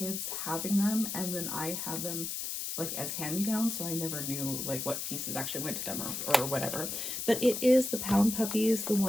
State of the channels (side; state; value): left; noise; hiss, 4 dB below the sound